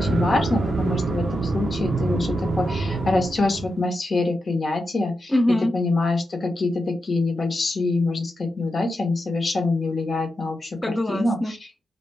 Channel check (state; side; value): normal; both; correlation 0.88